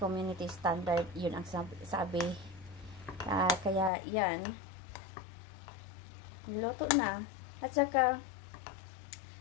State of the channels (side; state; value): right; drops out; at 3.9 s